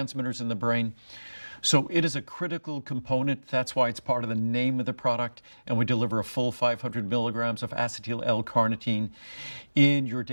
in the brain. So it is a critical component. That's why it's part of the name of the product. And we deliver a full 500 milligrams of acetyl L-carnitine in your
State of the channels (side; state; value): both; inverted; correlation -1.00